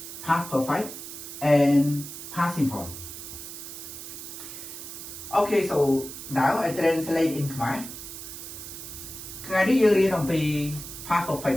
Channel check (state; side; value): noise; right; hiss, 10 dB below the sound